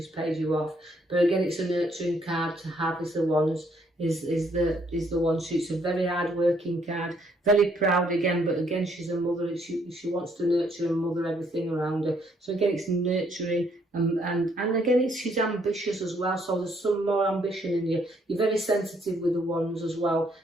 paid you off. But again, it's a nurturing card to have, is the Wands. Is the one. She's a very hard working card, very proud again, but again she's a mother. She wants to nurture and mother everything around her. So again, it's nurturing, and again she's ambitious as well. So there's some more ambition in you. You're very sensitive with the Wands as well.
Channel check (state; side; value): normal; both; correlation 0.69